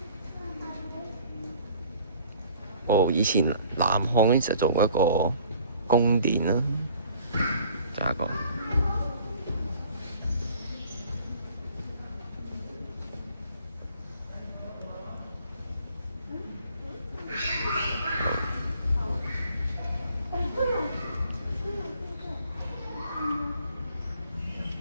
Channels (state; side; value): inverted; both; correlation -0.53